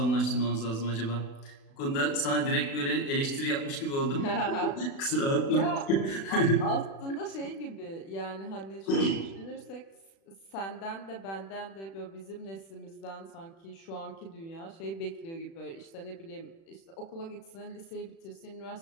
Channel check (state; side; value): late; right; 36 ms